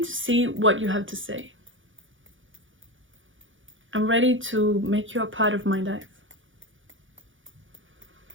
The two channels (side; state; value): left; late; 0.57 ms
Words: see what you have to say. I'm ready to make you a part of my life.